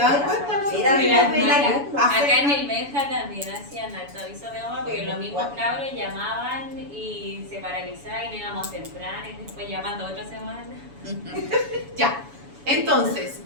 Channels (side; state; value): left; late; 7.1 ms